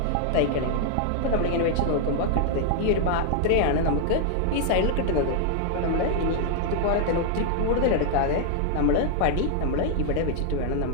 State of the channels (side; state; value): both; different; correlation 0.00